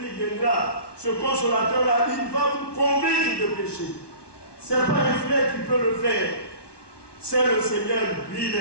viendra, ce consolateur-là, il va vous convaincre de péché. Ce n'est pas un frère qui peut le faire. C'est le Seigneur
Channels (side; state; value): right; late; 1.2 ms